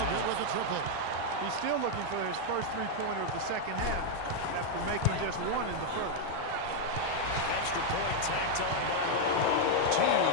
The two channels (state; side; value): different; both; correlation 0.00